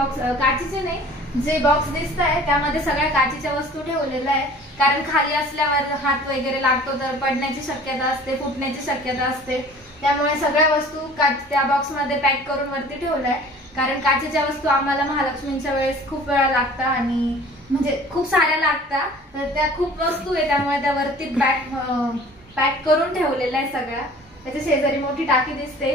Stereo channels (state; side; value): normal; both; correlation 0.47